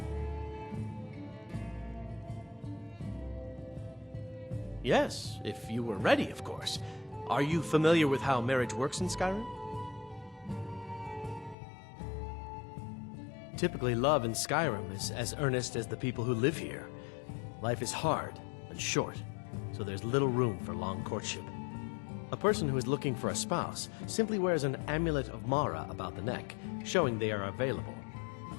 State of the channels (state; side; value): drops out; right; at 11.6 s